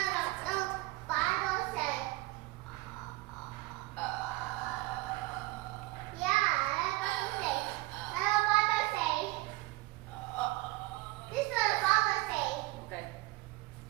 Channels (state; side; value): quieter; left; 20.2 dB